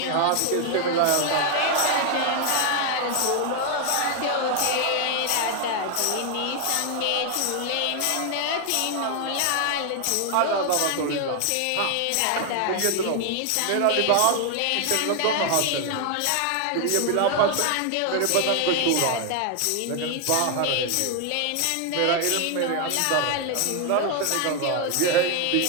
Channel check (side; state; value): both; different; correlation 0.01